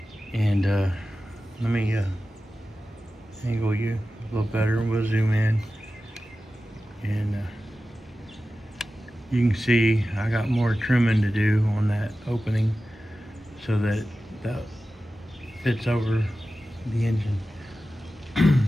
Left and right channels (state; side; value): normal; both; correlation 0.94